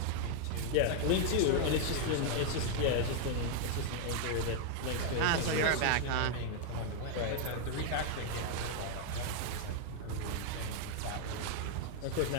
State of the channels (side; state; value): both; different; correlation 0.00